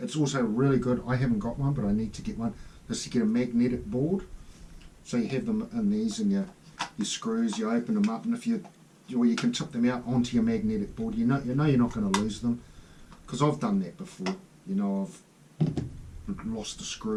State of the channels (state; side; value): identical; both; correlation 1.00